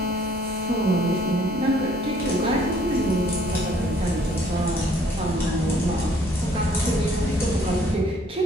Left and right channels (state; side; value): normal; both; correlation 0.60